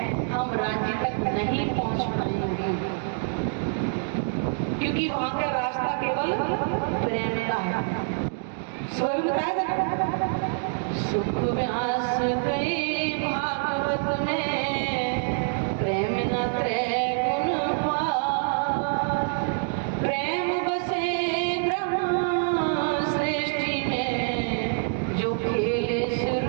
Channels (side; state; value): left; silent; digital silence